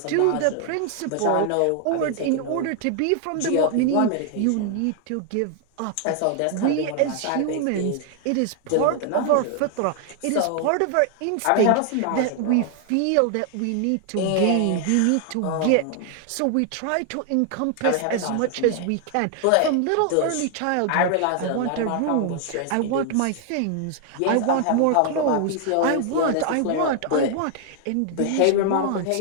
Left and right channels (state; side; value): different; both; correlation 0.00